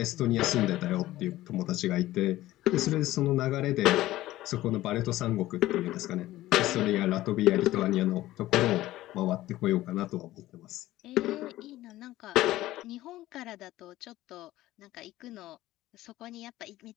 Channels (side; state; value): right; quieter; 15.9 dB